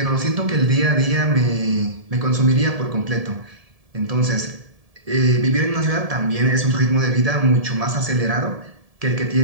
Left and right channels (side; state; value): left; late; 1.7 ms